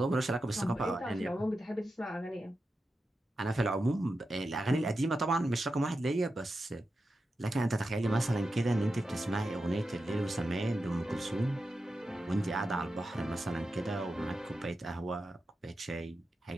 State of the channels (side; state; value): both; normal; correlation 0.90